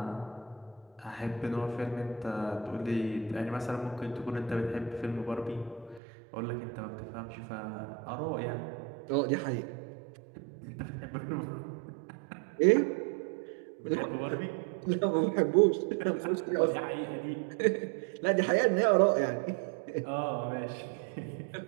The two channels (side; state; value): left; drops out; at 6.0 s